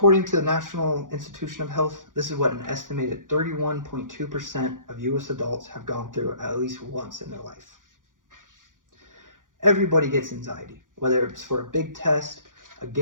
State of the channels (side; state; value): left; late; 0.89 ms